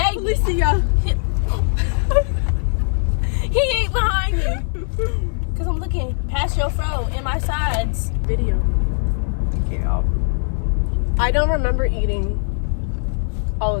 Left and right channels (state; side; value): silent; right; digital silence